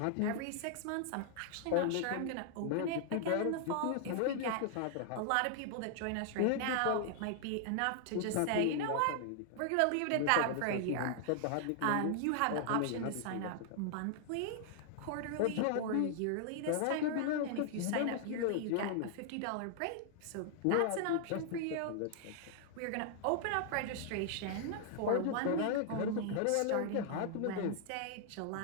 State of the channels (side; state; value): both; different; correlation 0.00